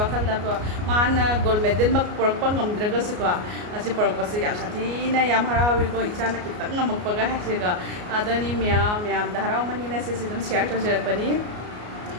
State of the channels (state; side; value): late; left; 33 ms